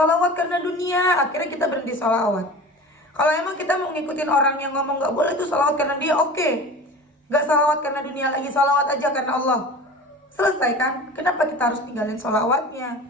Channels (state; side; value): normal; both; correlation 0.36